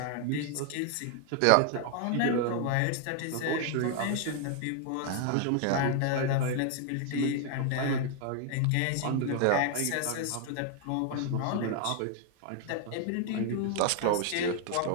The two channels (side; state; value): both; different; correlation 0.00